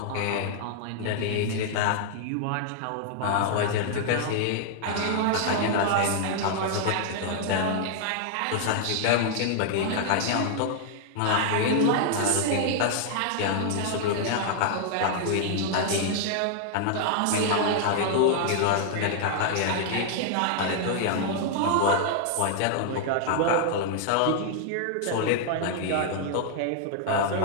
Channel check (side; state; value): both; different; correlation -0.01